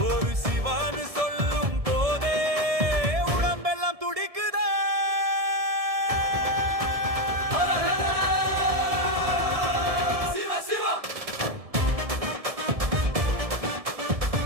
ஒரு சிவான்னு சொல்லும் போதே உடம்பெல்லாம் துடிக்குதே. சிவ சிவா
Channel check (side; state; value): left; late; 1.7 ms